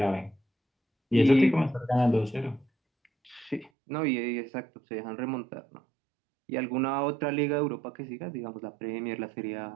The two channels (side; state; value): left; drops out; at 3.7 s